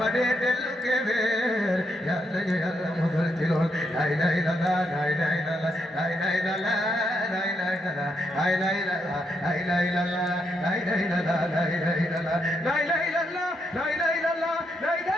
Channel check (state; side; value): normal; both; correlation 0.79